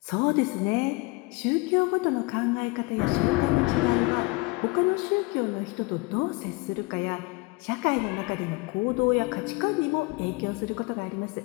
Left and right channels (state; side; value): quieter; right; 25.6 dB